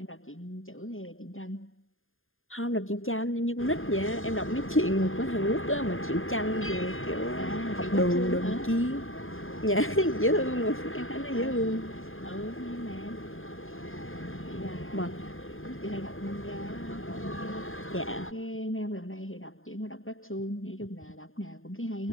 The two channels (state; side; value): late; right; 0.59 ms